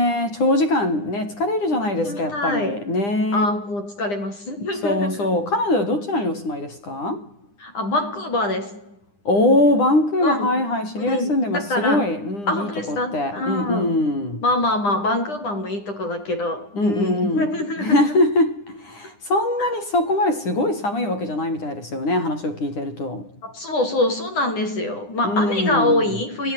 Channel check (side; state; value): right; late; 9.9 ms